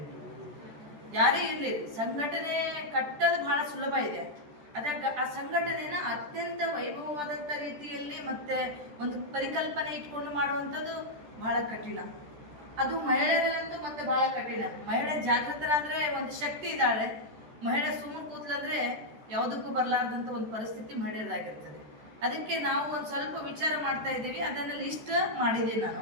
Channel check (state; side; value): late; left; 14 ms